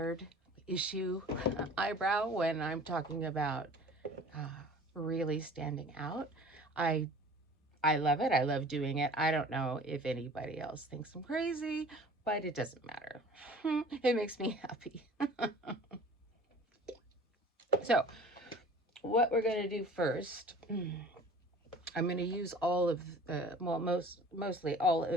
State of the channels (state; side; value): normal; both; correlation 0.45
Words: issue eyebrow when I'm talking about really standing out. I love it. I love doing it. I don't know if anybody else thinks I'm crazy, but it doesn't matter. It makes me happy. So what we're going to do first, I'm going to use all of the, well, mostly all